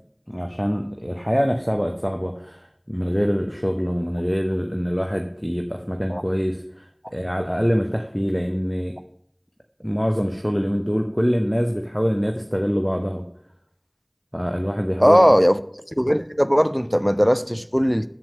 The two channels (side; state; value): both; identical; correlation 1.00